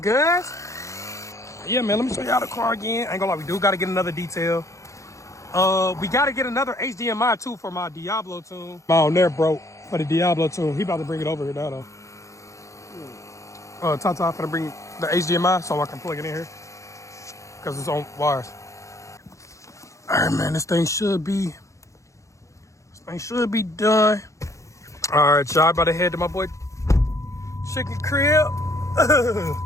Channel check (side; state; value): right; late; 0.15 ms